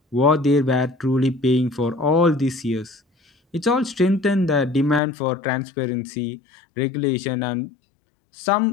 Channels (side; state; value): right; drops out; at 5.0 s